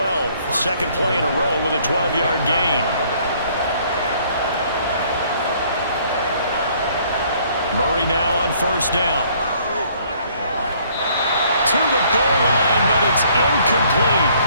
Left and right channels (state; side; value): inverted; both; correlation -0.62